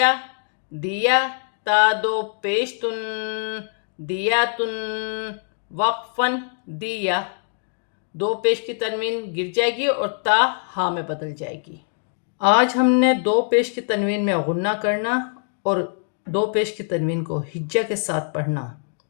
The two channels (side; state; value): right; silent; digital silence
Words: دیا، تا دو پیش تن، دیاتن، وقفاً دیا۔ دو پیش کی تنوین گر جائے گی اور تا ہا میں بدل جائے گی۔ آج ہم نے دو پیش کی تنوین میں غنہ کرنا اور دو پیش کی تنوین کو ہجہ کے ساتھ پڑھنا